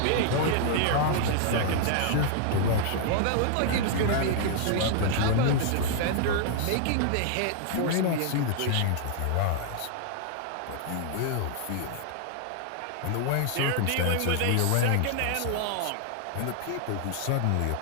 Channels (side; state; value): both; different; correlation 0.00